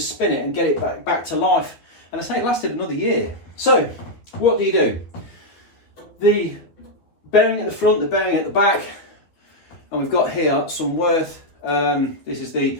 it and get it back to life, and I say it lasted another year. So what do? The bearing at the front, the bearing at the back, and we've got here some Worth, this is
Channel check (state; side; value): late; right; 12 ms